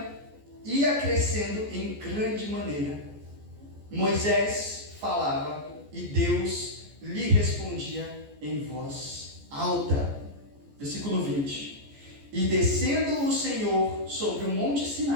ia crescendo em grande maneira. Moisés falava e Deus lhe respondia em voz alta. Versículo 20. E descendo o Senhor sobre o monte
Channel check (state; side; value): late; left; 14 ms